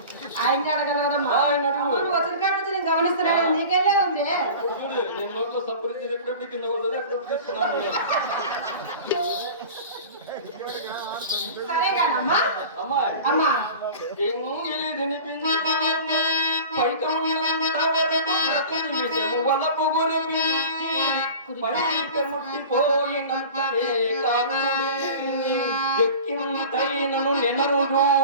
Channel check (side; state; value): both; inverted; correlation -0.38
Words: ఆయన్ని అడగలదమ్మా. ఆయన వచ్చిన కాడ నుంచి నేను గమనిస్తున్నాను, నీకెళ్ళే ఉంది. నేను నోట్లో సపరించి ఎప్పుడెప్పుడు కింద పడుతుంది, ఎప్పుడెప్పుడు తీసుకున్నాను. సరే కానమ్మా. అమ్మాయి, అమ్మా, ఎంగిలి తినిపించి వలపు గురిపించి పైక ముట్టిపోయినంతనే కాకుడే ఎక్కింతైనను నెనరు